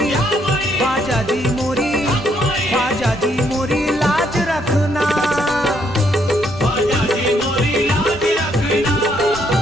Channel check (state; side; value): normal; both; correlation 0.72